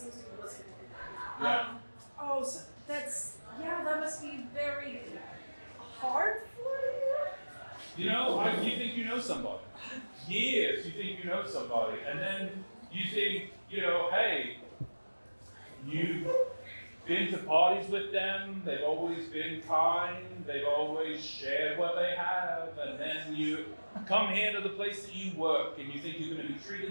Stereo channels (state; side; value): inverted; both; correlation -1.00